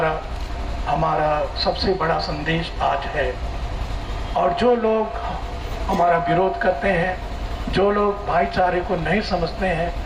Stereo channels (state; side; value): identical; both; correlation 1.00